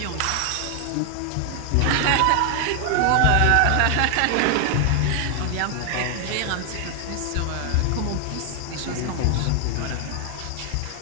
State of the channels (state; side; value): different; both; correlation 0.00